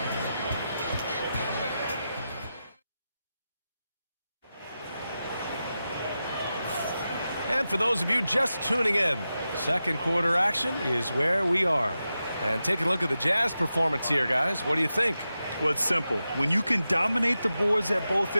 And for those of you just tuning in, second quarter action is where we are. And taking a look at the Jazz performance here, guys. What do you think? Well, it's simple. When you can dominate the boards at both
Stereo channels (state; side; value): inverted; both; correlation -0.91